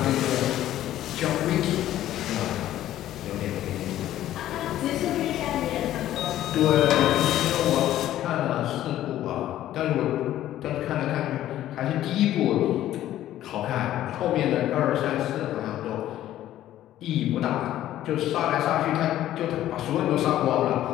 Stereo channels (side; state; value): right; quieter; 13.1 dB